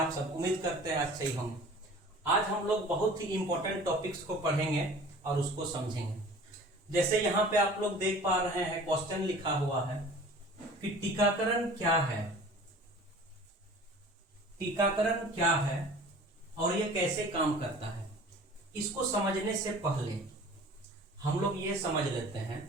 सब? उम्मीद करते हैं अच्छे ही होंगे। आज हम लोग बहुत ही इंपॉर्टेंट टॉपिक्स को पढ़ेंगे और उसको समझेंगे। जैसे यहाँ पे आप लोग देख पा रहे हैं, क्वेश्चन लिखा हुआ है कि टीकाकरण क्या है। टीकाकरण क्या है और ये कैसे काम करता है, इसको समझने से पहले हम लोग ये समझ लेते हैं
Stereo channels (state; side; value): normal; both; correlation 0.45